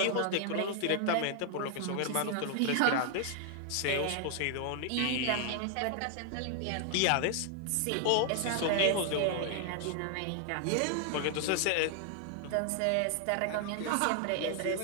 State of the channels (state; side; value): different; both; correlation 0.00